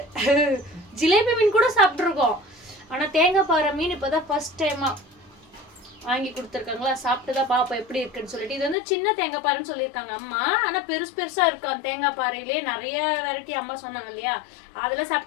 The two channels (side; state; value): right; drops out; at 8.8 s